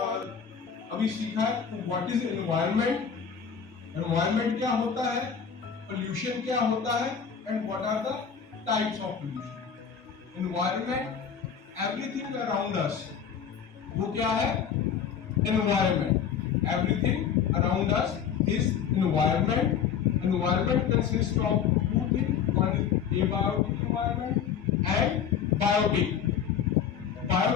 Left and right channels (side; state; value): right; quieter; 7.5 dB